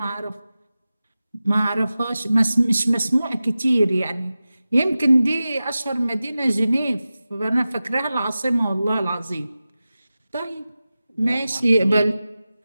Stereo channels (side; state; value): both; inverted; correlation -0.95